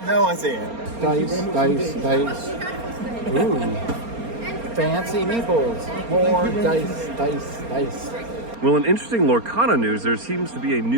No idea. Dice. Ooh. Fancy meeples. More dice. Well, in interesting Lorcana news, there seems to be a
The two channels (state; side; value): late; left; 4.3 ms